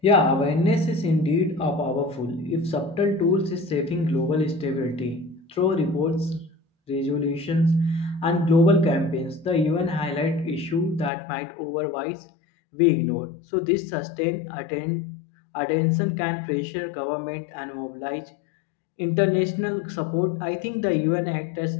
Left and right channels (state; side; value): drops out; right; at 11.1 s